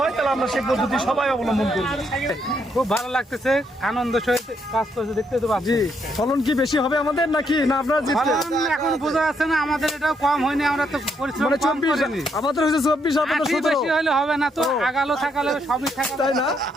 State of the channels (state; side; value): normal; both; correlation 0.75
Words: হয় তাহলে আমরা সেই পদ্ধতি সবাই অবলম্বন করব। খুব ভালো লাগতেছে, আনন্দ সহিত কাজ করছে, দেখতে তো পাচ্ছি। ফলন কি বেশি হবে আমাদের নাকি না আপনারা ফলন এখন বোঝা যাচ্ছে না, আমাদের এটাও কম হয়নি, আমরা তো পরিশ্রম মানে কম 24 করিনি। আমাদের হচ্ছে 24 আপনাদের আশি 17 বেশি হলে হবে না তো, আগালো থাকালে সবই থাকালে তাই না?